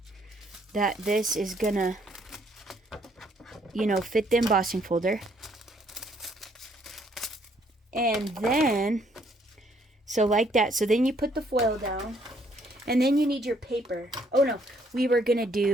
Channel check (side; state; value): both; normal; correlation 0.67